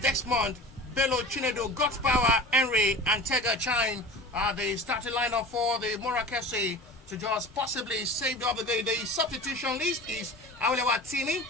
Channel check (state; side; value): normal; both; correlation 0.36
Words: Desmond, Bello Chinedu, God's Power, Henry, and Tega Chine are the starting lineup for the Morak FC to just possibly save the other day. The substitution list is Aulewa Tini,